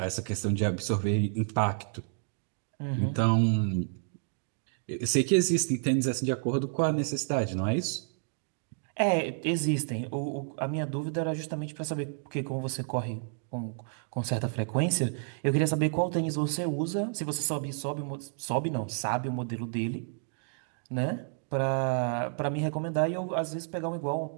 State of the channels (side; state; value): left; silent; digital silence